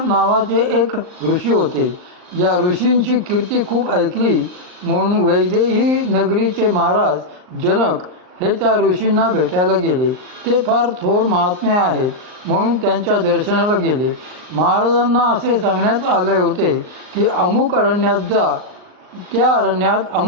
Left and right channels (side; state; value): left; late; 39 ms